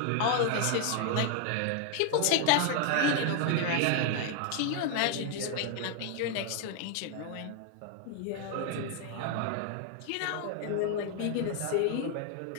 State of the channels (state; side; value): different; both; correlation 0.00